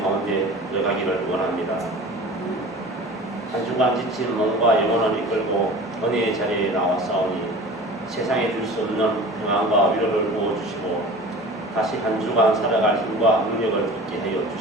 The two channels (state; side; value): normal; both; correlation 0.39